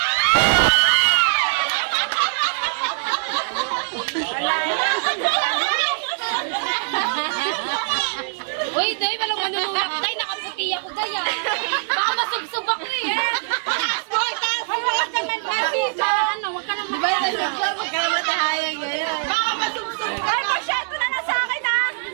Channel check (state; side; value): silent; left; digital silence